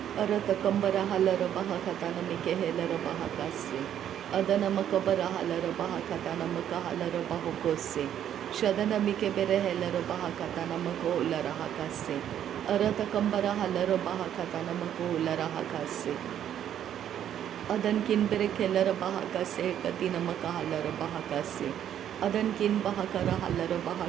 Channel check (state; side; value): quieter; left; 10.2 dB